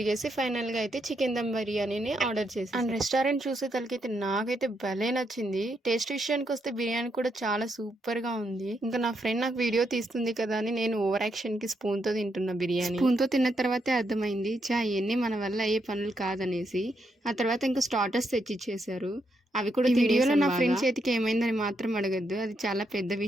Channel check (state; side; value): normal; both; correlation 0.79